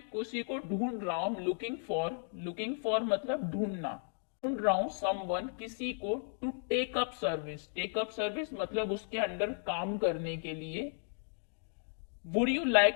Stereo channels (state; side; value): silent; right; digital silence